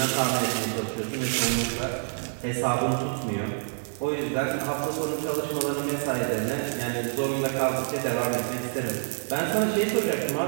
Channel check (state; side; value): silent; left; digital silence